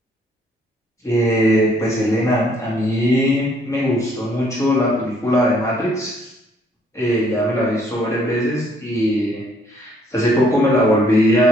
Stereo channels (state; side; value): normal; both; correlation 0.65